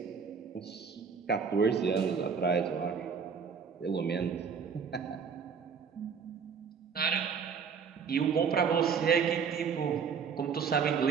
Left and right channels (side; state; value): left; quieter; 6.3 dB